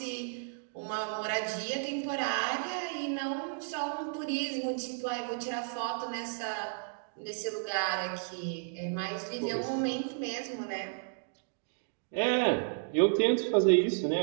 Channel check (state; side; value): silent; left; digital silence